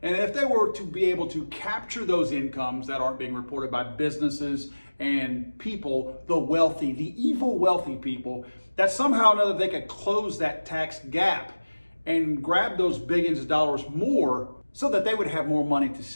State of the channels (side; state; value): both; inverted; correlation -1.00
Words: and if they were to be able to capture those incomes that aren't being reported by businesses and people, the wealthy, the evil wealthy people, that somehow or another they could close that tax gap and grab those billions of dollars more so that they would have more money to